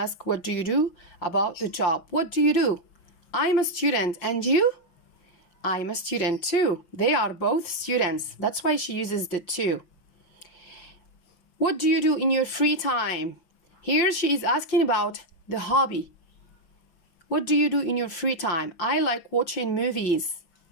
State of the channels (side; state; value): right; late; 5.6 ms